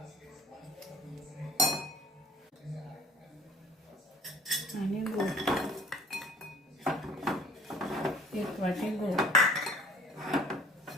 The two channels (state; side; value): normal; both; correlation 0.52